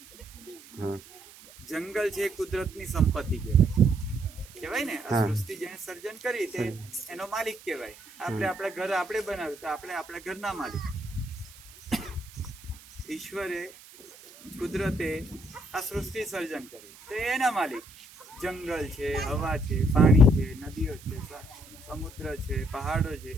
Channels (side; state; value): right; noise; hiss, 21 dB below the sound